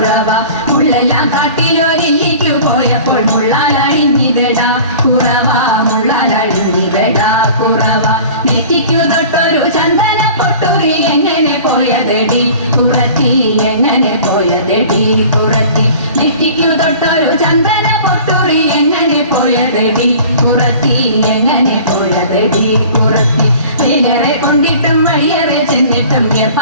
മുള്ളെല്ലാം കാട്ടിലൊരില്ലിക്കു പോയപ്പോൾ മുള്ളാലഴിഞ്ഞിതടാ കുറവ മുള്ളാലഴിഞ്ഞിതടാ കുറവ നെറ്റിക്കു തൊട്ടൊരു ചന്ദന പൊട്ടുറി എങ്ങനെ പോയതെടി കുറത്തി എങ്ങനെ പോയതെടി കുറത്തി നെറ്റിക്കു തൊട്ടൊരു ചന്ദന പൊട്ടുറി എങ്ങനെ പോയതെടി കുറത്തി എങ്ങനെ പോയതെടി കുറത്തി വേലറെ കൊണ്ടിട്ടും വഴിയറെ ചെന്നിട്ടും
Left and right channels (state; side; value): inverted; both; correlation -0.43